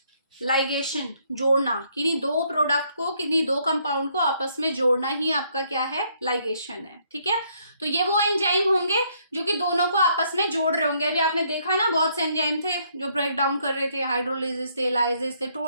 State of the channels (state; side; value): inverted; both; correlation -0.69